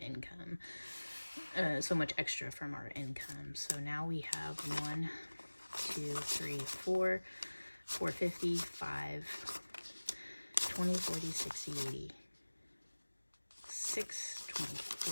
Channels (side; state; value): both; inverted; correlation -1.00